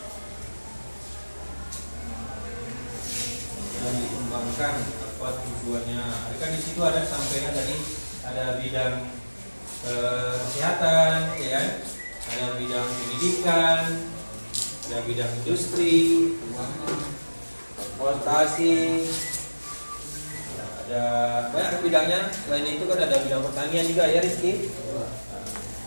Dan dikembangkan apa tujuannya. Kan di situ ada sampaikan tadi ada bidang kesehatan, ya kan? Ada bidang pendidikan, ada bidang industri, transportasi, ada banyak bidangnya. Selain itu kan ada bidang pertanian juga ya Rizky.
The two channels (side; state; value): both; inverted; correlation -1.00